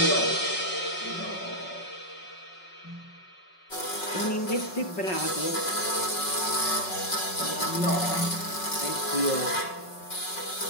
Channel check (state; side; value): late; right; 5.4 ms